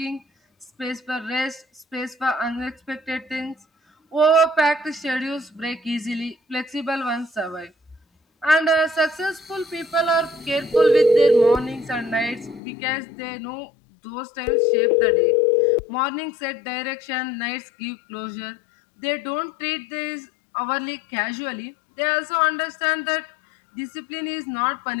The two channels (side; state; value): right; drops out; at 12.6 s